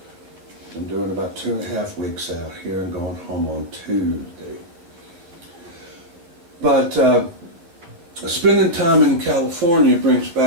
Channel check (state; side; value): late; left; 11 ms